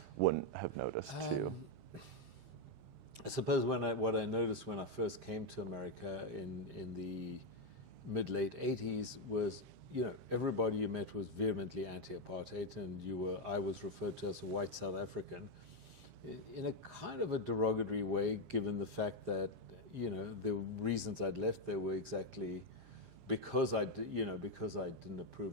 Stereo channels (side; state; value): left; late; 7.5 ms